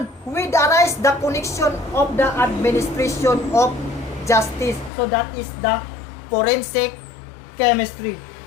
with arise the connection of the administration of justice. So that is the forensic chemistry.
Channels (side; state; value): right; drops out; at 4.9 s